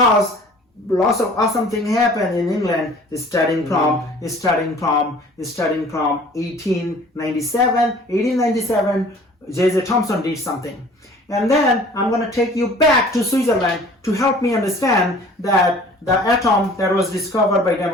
lots of awesome thing happened in England. Starting from 1897, J.J. Thomson did something. And then I'm going to take you back to Switzerland to help me understand that the atom that was discovered by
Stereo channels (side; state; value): both; normal; correlation 0.49